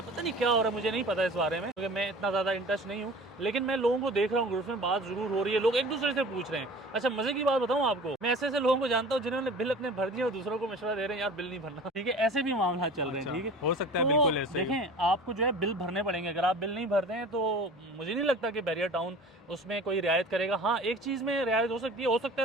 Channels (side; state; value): both; normal; correlation 0.41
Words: पता नहीं क्या हो रहा है, मुझे नहीं पता इस बारे में क्योंकि मैं इतना ज़्यादा इंटरेस्ट नहीं हूँ, लेकिन मैं लोगों को देख रहा हूँ, ग्रुप में बात जरूर हो रही है, लोग एक दूसरे से पूछ रहे हैं। अच्छा मजे की बात बताऊँ आपको, मैं ऐसे ऐसे लोगों को जानता हूँ जिन्होंने बिल अपने भर दिए और दूसरों को मशवरा दे रहे हैं यार बिल नहीं भरना, ठीक है, ऐसे भी मामला चल रहे हैं, ठीक है। हो सकता है, तो बिल्कुल ऐसे देखें आपको जो है बिल भरने पड़ेंगे, अगर आप बिल नहीं भरते हैं तो मुझे नहीं लगता कि बहरिया टाउन उसमें कोई रियायत करेगा। हाँ एक चीज़ में रियायत हो सकती है, हो सकता